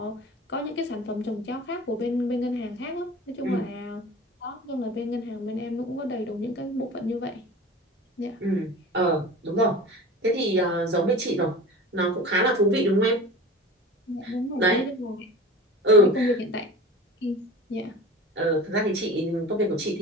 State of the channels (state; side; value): normal; both; correlation 0.37